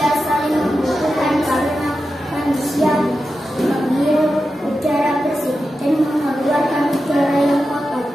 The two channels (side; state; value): both; normal; correlation 0.91